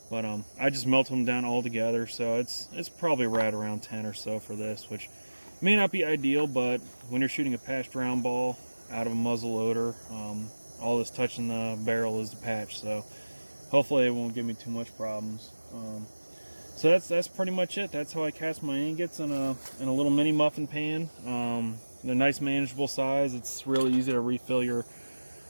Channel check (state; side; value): inverted; both; correlation -1.00